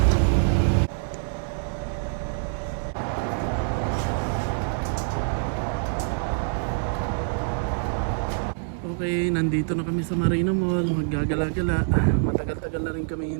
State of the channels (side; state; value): left; silent; 61 dB below the other